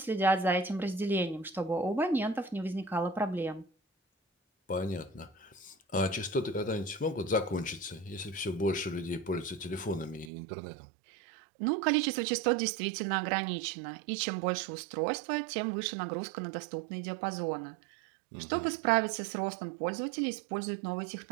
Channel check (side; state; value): left; drops out; at 10.3 s